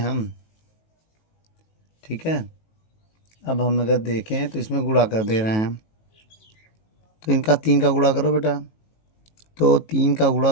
ठीक है, अब हम अगर देखें तो इसमें गुणा कर दे रहे हैं। तो इनका 3 का गुणा करो बेटा, तो 3 का गुणा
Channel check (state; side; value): late; right; 19 ms